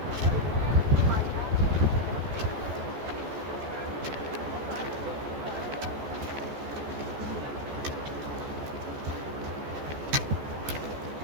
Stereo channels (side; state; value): left; late; 14 ms